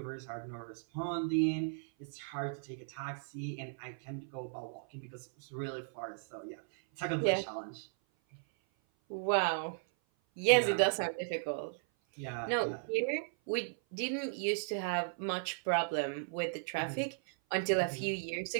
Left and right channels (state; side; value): silent; left; 54 dB below the other